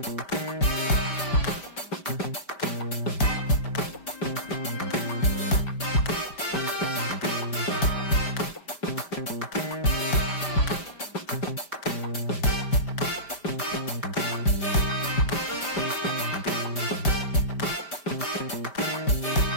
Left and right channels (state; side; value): late; right; 5.1 ms